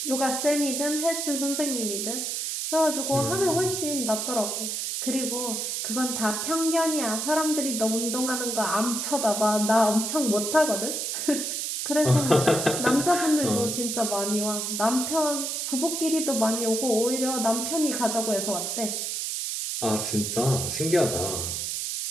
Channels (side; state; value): right; noise; hiss, 2 dB below the sound